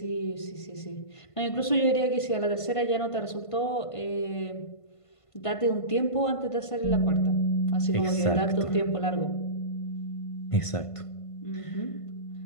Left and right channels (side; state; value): right; late; 1.5 ms